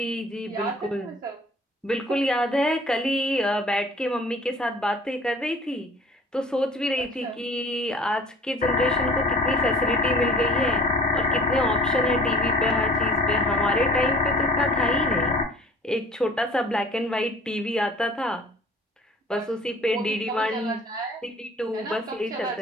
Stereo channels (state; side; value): normal; both; correlation 0.48